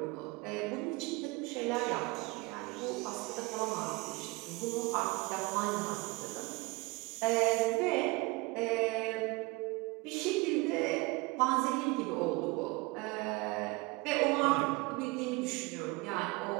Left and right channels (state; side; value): quieter; left; 24.4 dB